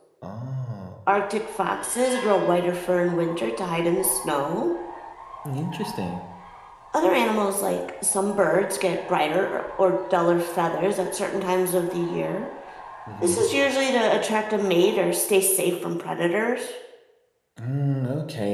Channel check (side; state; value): both; identical; correlation 1.00